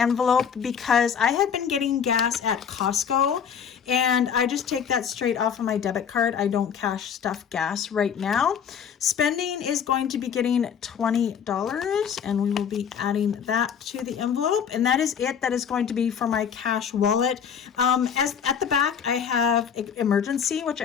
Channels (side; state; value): right; quieter; 7.6 dB